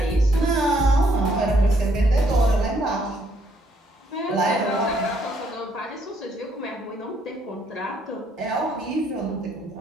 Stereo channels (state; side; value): normal; both; correlation 0.69